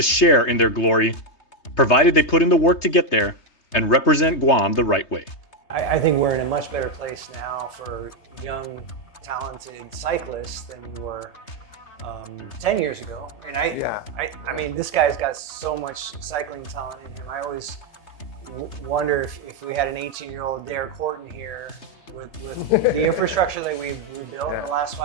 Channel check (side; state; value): right; late; 3.2 ms